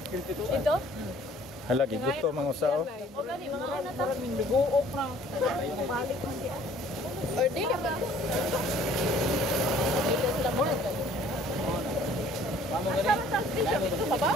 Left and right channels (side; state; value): both; normal; correlation 0.55